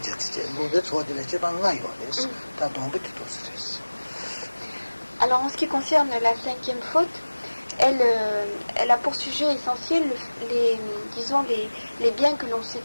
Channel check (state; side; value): inverted; both; correlation -1.00